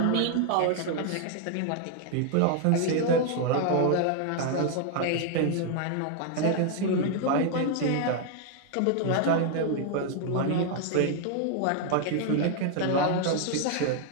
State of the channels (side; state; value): both; different; correlation 0.00